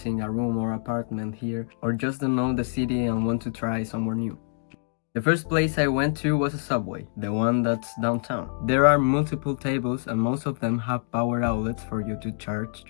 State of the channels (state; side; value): silent; right; digital silence